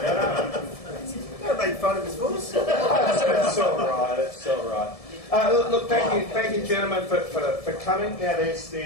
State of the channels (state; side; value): late; right; 1.7 ms